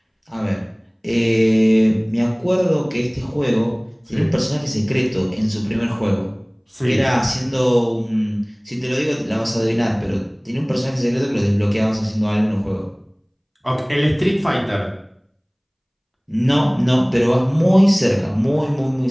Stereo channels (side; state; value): both; identical; correlation 1.00